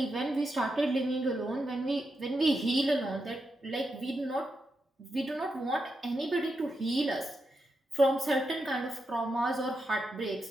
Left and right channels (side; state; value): both; normal; correlation 0.86